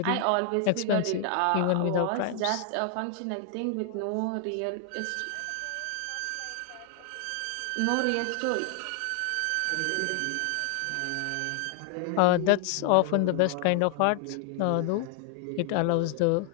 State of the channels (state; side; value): different; both; correlation 0.00